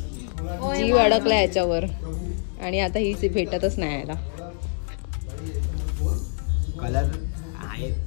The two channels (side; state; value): right; silent; digital silence